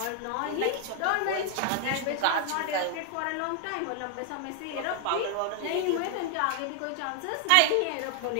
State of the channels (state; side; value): different; both; correlation 0.00